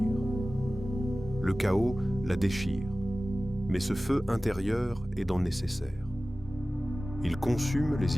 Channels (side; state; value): both; normal; correlation 0.97